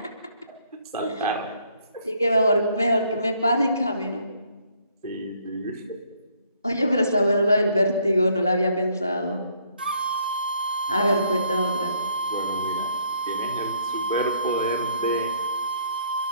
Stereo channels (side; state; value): both; inverted; correlation -0.66